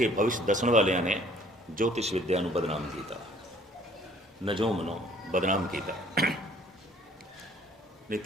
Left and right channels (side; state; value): both; normal; correlation 0.57